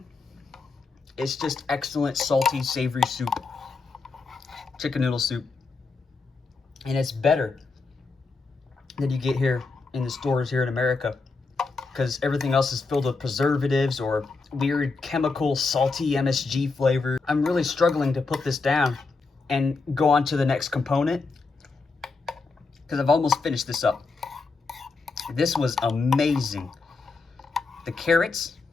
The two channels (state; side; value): quieter; right; 4.1 dB